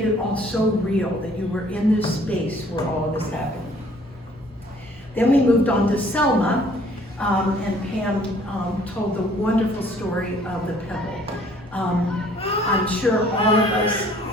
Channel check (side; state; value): both; normal; correlation 0.58